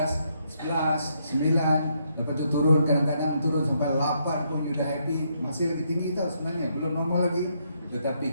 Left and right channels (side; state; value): both; inverted; correlation -0.75